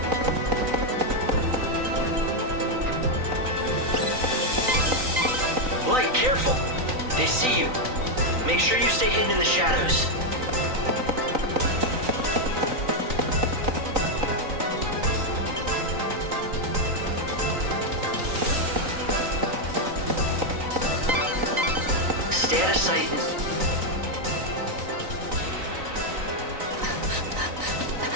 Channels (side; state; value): left; late; 3.9 ms